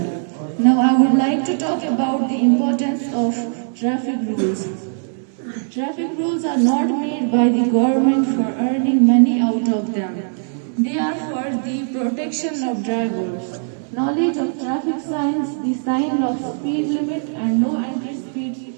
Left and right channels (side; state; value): left; silent; 66 dB below the other